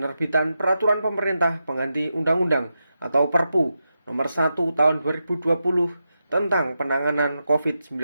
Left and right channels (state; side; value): inverted; both; correlation -0.88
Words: peraturan pemerintah pengganti undang-undang atau Perpu nomor 1 tahun 2020 tentang penanganan